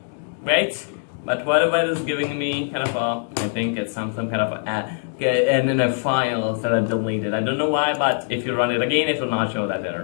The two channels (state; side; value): silent; right; digital silence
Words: great. But whatever it is giving me kind of I think it's some kind of in a file that I deleted. I don't know why, but if you run it again, it will not show that